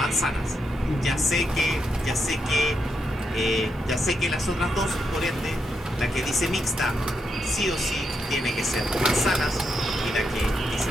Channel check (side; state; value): both; normal; correlation 0.82